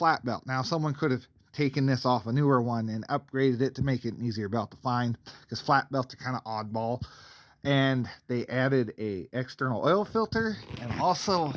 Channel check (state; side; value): identical; both; correlation 1.00